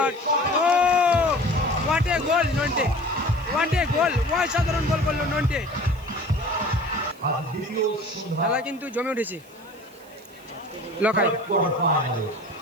ও হোয়াট এ গোল নন্টে, অসাধারণ গোল করলো নন্টে। খেলা কিন্তু জমে উঠেছে। লখাই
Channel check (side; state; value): right; noise; hiss, 27 dB below the sound